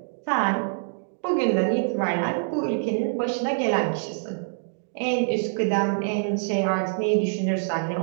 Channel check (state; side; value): silent; left; digital silence